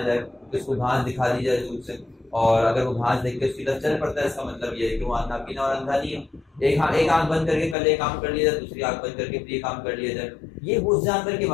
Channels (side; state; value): right; drops out; at 7.8 s